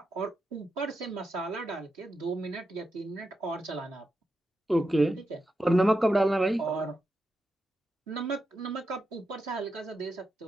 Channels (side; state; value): both; normal; correlation 0.87